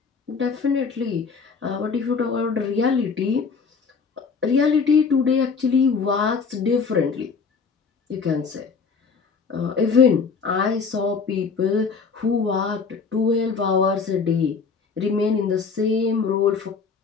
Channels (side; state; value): right; quieter; 5.3 dB